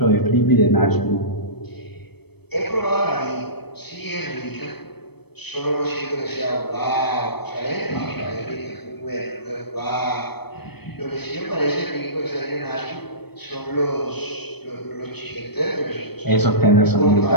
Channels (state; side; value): late; right; 0.97 ms